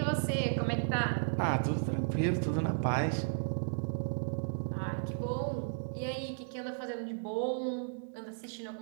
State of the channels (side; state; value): left; silent; digital silence